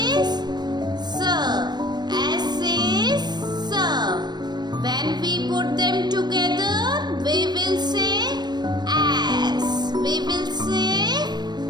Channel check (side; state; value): left; late; 0.21 ms